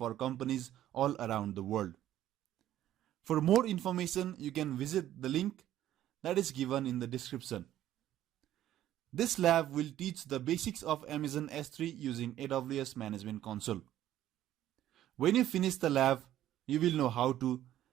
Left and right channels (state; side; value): quieter; left; 12.6 dB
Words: companies all around the world. For more information, you can visit the link that is given in the description. This lab will teach the basics of Amazon S3 using AWS Management Console. When you finish the lab, you will know how to